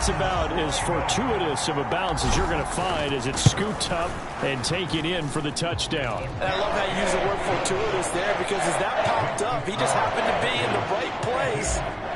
about as fortuitous of a bounce as you're going to find as it's scooped up and taken in for the touchdown. And I love how you use the word fortuitous there, because as that popped up, he just happened to be in the right place,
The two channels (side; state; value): both; identical; correlation 1.00